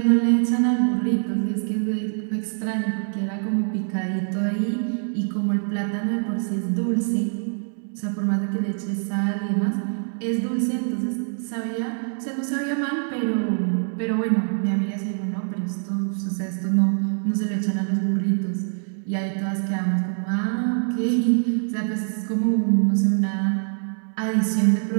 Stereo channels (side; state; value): left; silent; 62 dB below the other